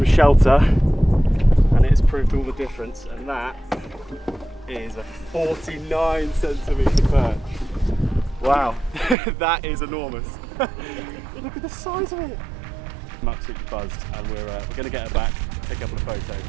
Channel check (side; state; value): left; drops out; at 9.2 s